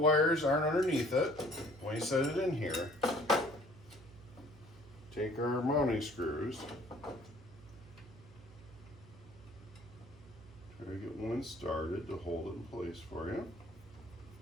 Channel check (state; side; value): noise; right; hum, 20 dB below the sound